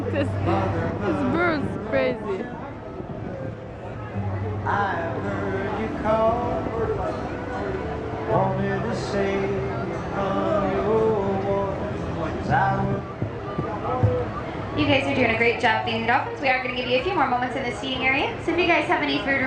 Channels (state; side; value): identical; both; correlation 1.00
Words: This bird's crazy. I heard you call, wanted to say from your voice I would. You guys are doing a great job feeding the dolphins. We are going to give you a few more moments in the seating area. So if you guys have any food